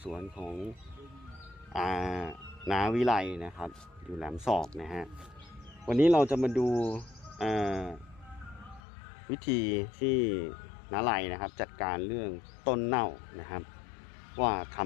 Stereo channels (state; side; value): drops out; right; at 8.8 s